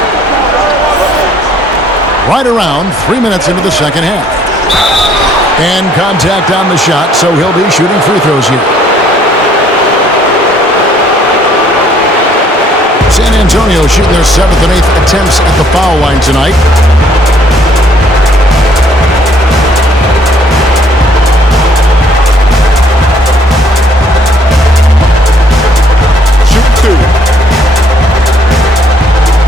Right around 3 minutes into the second half. And contact on the shot, so he'll be shooting free throws here. San Antonio shooting their 7th and 8th attempts at the foul line tonight. Shoot 2.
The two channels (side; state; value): both; normal; correlation 0.63